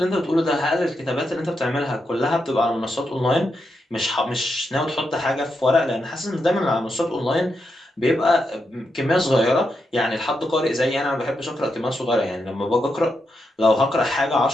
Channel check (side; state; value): both; normal; correlation 0.84